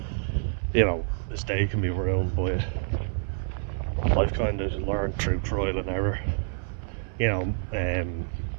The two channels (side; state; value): left; silent; 60 dB below the other